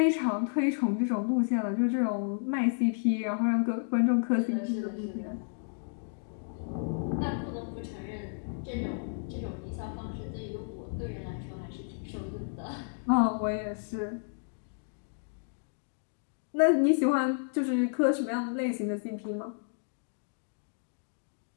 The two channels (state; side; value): silent; right; digital silence